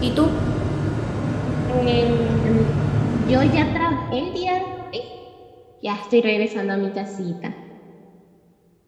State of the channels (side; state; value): both; identical; correlation 1.00